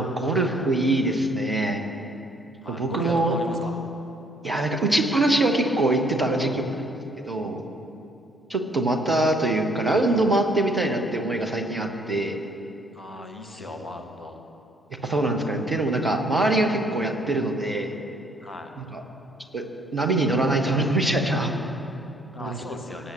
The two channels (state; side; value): normal; both; correlation 0.63